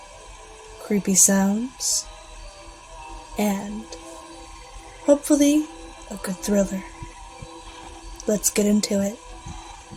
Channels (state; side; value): identical; both; correlation 1.00